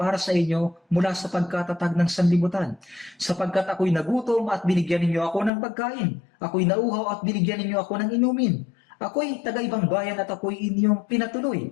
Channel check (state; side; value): drops out; right; at 5.5 s